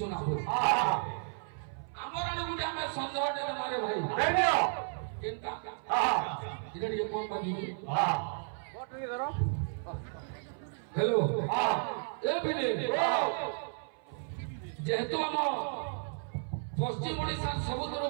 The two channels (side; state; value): left; silent; 56 dB below the other